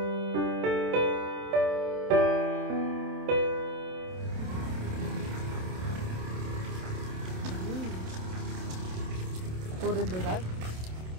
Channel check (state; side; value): late; left; 27 ms